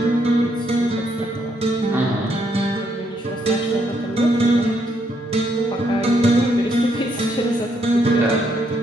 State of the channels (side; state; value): both; normal; correlation 0.74